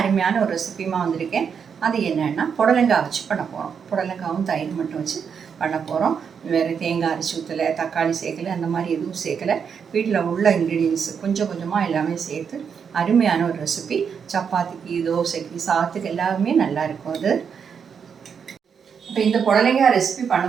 ஒரு ரெசிபியுமா வந்திருக்கேன். அது என்னென்னா புடலங்காய் வச்சு பண்ண போகிறோம். புடலங்காவும் தயிர் மட்டும் வச்சு பண்ண போகிறோம். வேறு தேங்காய் அரைச்சி ஊற்றலை, தக்காளி சேர்க்கலை, அந்த மாதிரி எதுவும் சேர்க்கலை. வீட்டில் உள்ள இன்க்ரீடியன்ஸ் கொஞ்சம் கொஞ்சமாக எல்லாமே சேர்த்து அருமையான ஒரு ரெசிபி. சப்பாத்திக்கு, தோசைக்கு, சாதத்துக்கு எல்லாமே நல்லாயிருக்கும் அது. இப்போ இந்த புடலங்காய் ரெசிபி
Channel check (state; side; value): quieter; left; 6.8 dB